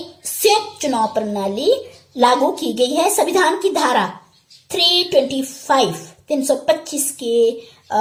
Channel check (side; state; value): both; identical; correlation 1.00